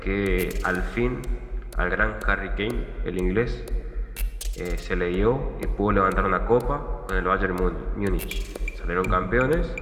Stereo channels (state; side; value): identical; both; correlation 1.00